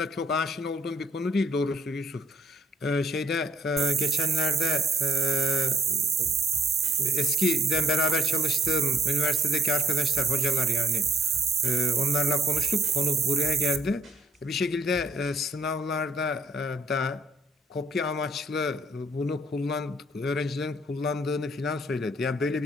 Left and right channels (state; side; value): normal; both; correlation 0.66